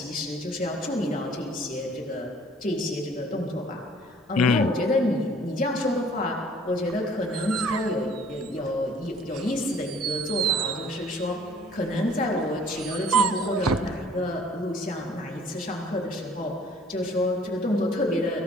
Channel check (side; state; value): both; normal; correlation 0.54